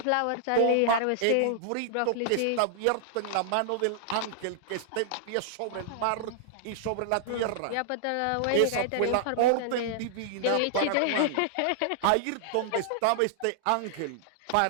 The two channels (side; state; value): both; different; correlation -0.01